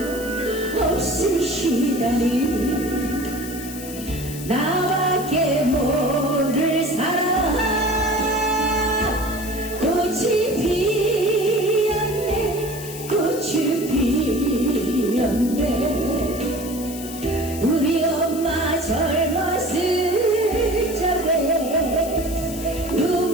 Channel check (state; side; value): noise; left; hiss, 12 dB below the sound